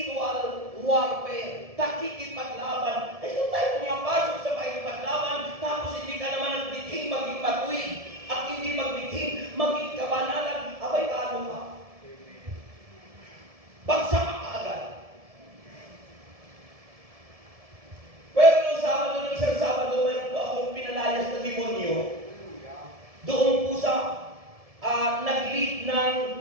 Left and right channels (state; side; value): late; left; 1.7 ms